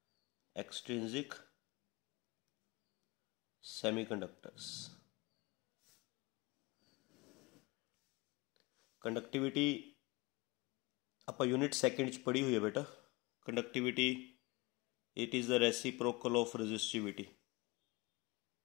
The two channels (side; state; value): right; quieter; 24.7 dB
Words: extrinsic semiconductors. Conductivity आप unit second च पढ़ी हुई है बेटा। Conductivity it is the reciprocal of resistivity,